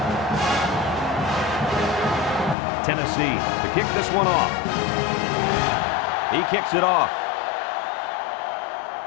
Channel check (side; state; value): right; drops out; at 2.6 s